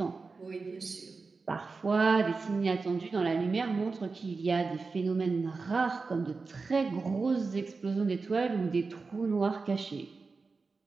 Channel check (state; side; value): quieter; left; 4.3 dB